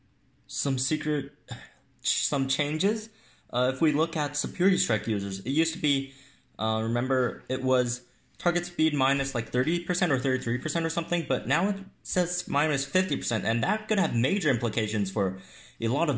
changes. If we look at Superiority Strike users, it used to be, remember, it was target speed minus like 30% or 33% or something, but now it says minus 50%, and that could have major implications for a lot of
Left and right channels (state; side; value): identical; both; correlation 1.00